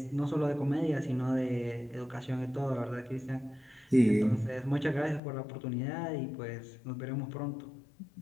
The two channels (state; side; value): drops out; right; at 5.2 s